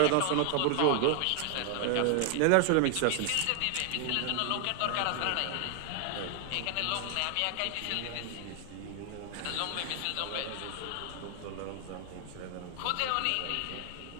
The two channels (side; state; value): both; different; correlation 0.00